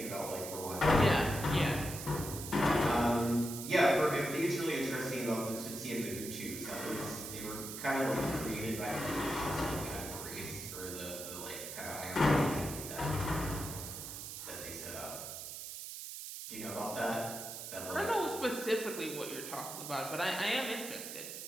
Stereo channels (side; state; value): right; noise; hiss, 8 dB below the sound